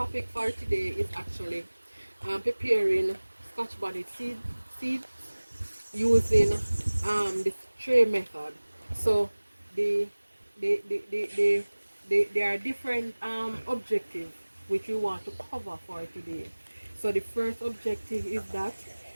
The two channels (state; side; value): inverted; both; correlation -1.00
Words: for today is actually preparing Scotch bonnet seeds using the tray method. So the there are different objectives which we want to cover for today. So the first objective is that